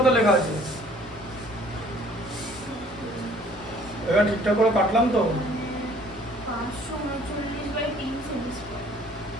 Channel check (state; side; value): normal; both; correlation 0.56